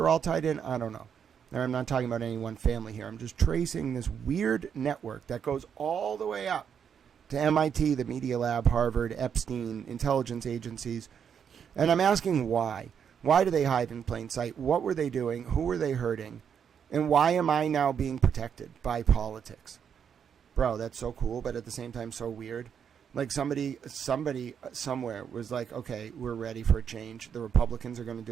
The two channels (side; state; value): left; quieter; 7.7 dB